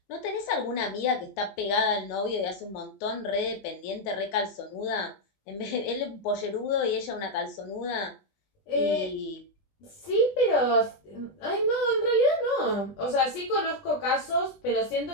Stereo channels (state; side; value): late; right; 20 ms